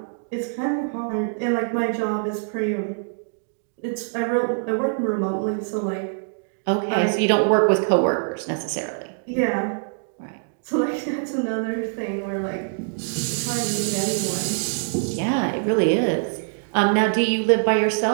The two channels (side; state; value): left; silent; digital silence